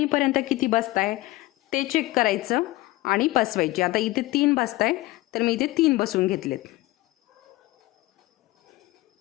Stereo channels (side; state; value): right; quieter; 19.2 dB